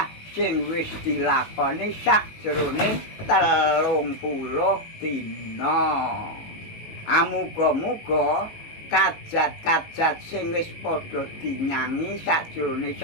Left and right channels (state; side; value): late; right; 19 ms